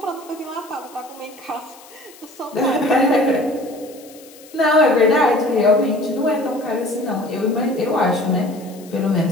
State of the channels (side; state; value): left; noise; hiss, 22 dB below the sound